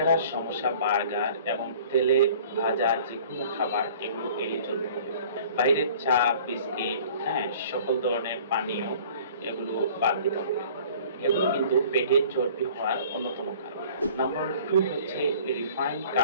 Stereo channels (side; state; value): both; inverted; correlation -0.49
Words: সমস্যা, বার্গার এবং তেলে ভাজা যেকোনো খাবার এগুলো এড়িয়ে চলতে হবে। বাইরের চা, বিস্কিট, সকল ধরনের পানীয় এগুলো বাদ দিতে হবে। এগুলো কিন্তু পেটের চর্বি হওয়ার অন্যতম কারণ। নাম্বার 2 হচ্ছে রিফাইন্ড